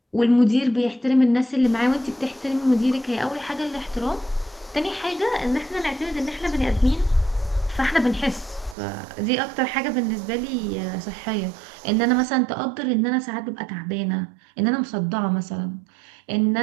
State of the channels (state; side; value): drops out; left; at 8.8 s